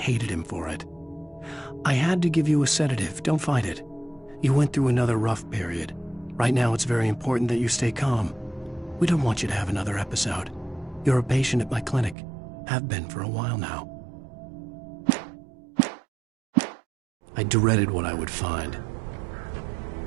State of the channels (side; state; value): left; drops out; at 12.2 s